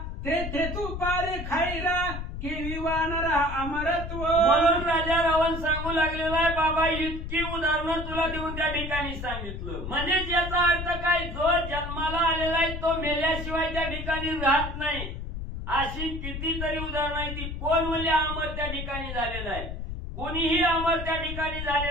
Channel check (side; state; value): left; noise; rumble, 6 dB below the sound